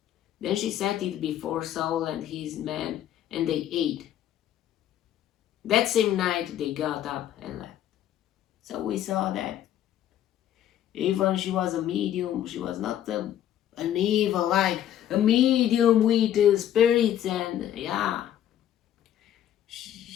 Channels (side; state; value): right; quieter; 11.2 dB